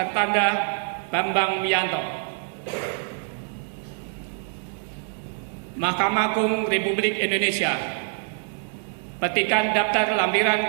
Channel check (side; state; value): left; silent; 62 dB below the other